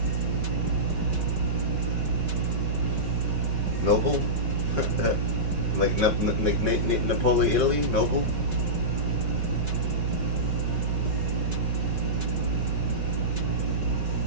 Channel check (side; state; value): left; late; 5.3 ms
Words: Noble? Like Napoli, Italy? Noble?